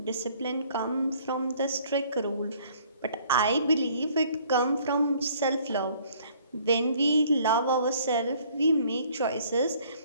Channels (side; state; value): both; inverted; correlation -0.59